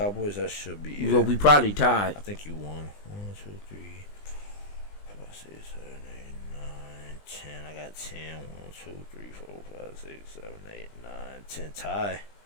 That should be. Well, we probably tied. I think you won. 1, 2, 3, 4, 5, 6, 7, 8, 9, 10. I got 10. 1, 2, 3, 4, 5, 6, 7, 8, 9, 10. Tie.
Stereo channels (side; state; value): right; late; 20 ms